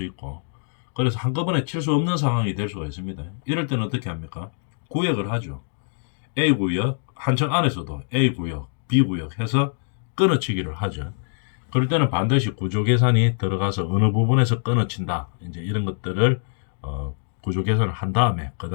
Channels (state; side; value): silent; right; digital silence